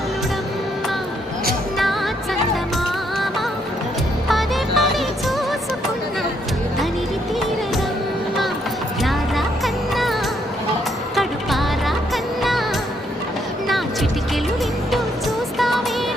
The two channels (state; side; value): normal; both; correlation 0.73